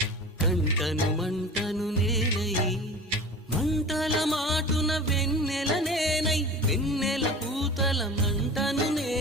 కంటను మంటను నేనై మంటల మాటున వెన్నెల నేనై వెన్నెల పూతల మంటను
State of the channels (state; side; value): normal; both; correlation 0.36